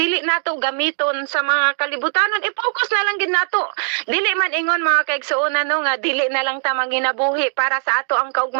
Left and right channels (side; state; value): left; silent; digital silence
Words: nato gamiton sa mga kalibutanon, i-focus na lang gid nato. Dili man ingon mga kaigsuonan no nga dili na lang ta manginabuhi para sa ato ang